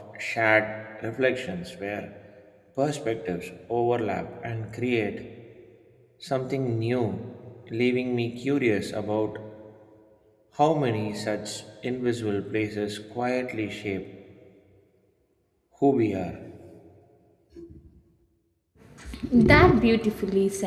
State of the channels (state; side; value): identical; both; correlation 1.00